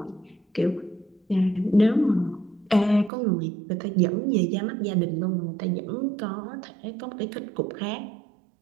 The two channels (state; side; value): drops out; left; at 3.1 s